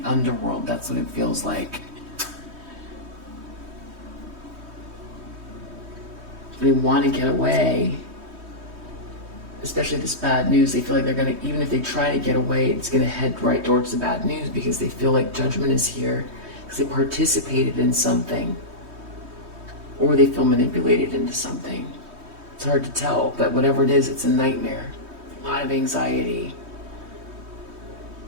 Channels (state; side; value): late; left; 3.2 ms